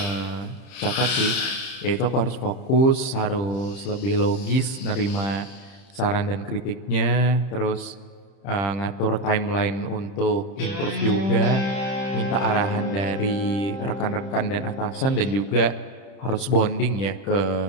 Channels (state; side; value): late; right; 30 ms